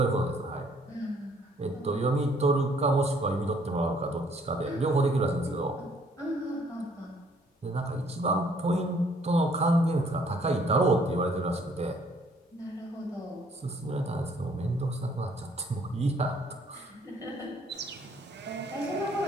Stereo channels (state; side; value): normal; both; correlation 0.62